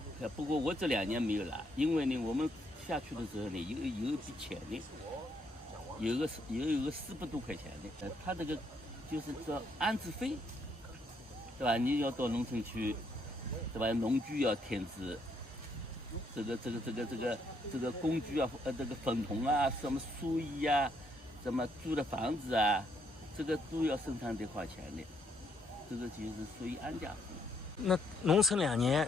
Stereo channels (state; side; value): normal; both; correlation 0.72